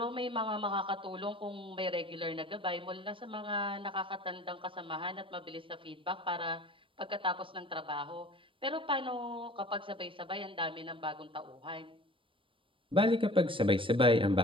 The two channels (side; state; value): left; late; 0.25 ms